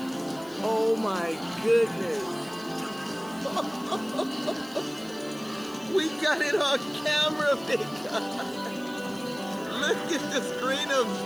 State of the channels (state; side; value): noise; left; hiss, 21 dB below the sound